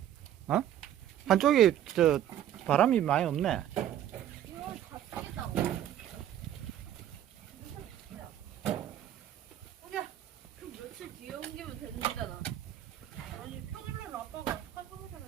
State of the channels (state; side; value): quieter; left; 11.3 dB